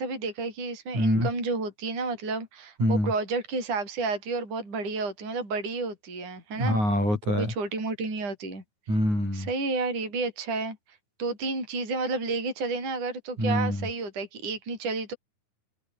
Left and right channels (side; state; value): left; late; 9.9 ms